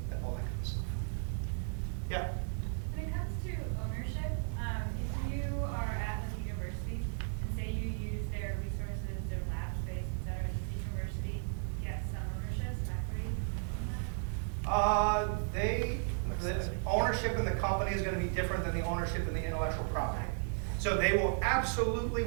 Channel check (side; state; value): left; silent; digital silence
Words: all that kind of stuff. Yeah. When it comes to ownership, if you are at like a university and say you use their resources, their lab space, et cetera, does the university get some ownership, some equity on that? The ownership in the company is going to be different than the ownership in the intellectual property. So they will absolutely